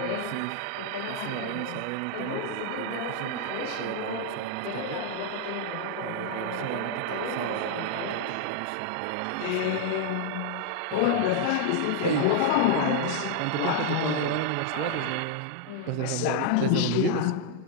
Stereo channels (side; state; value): both; different; correlation 0.00